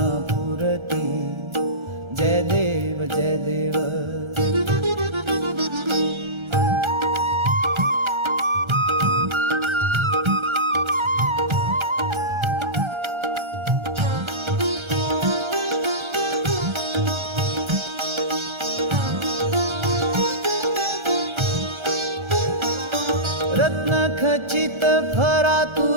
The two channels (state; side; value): late; left; 1.3 ms